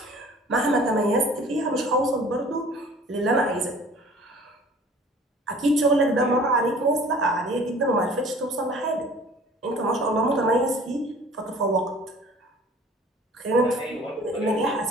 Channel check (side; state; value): both; normal; correlation 0.49